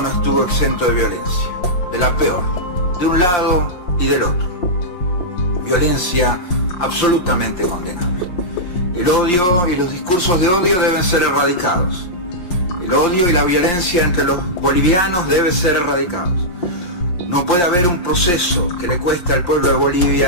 no estuvo exento de violencia, de la peor, de un lado y del otro. Violencia absolutamente condenable. El odio y los discursos de odio deben ser erradicados. El odio y la violencia entre los bolivianos deben ser erradicados. No puede haber un proceso que le cueste al pueblo de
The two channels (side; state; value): right; late; 5.7 ms